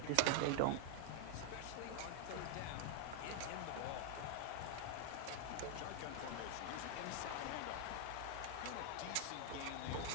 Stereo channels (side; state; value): both; different; correlation 0.00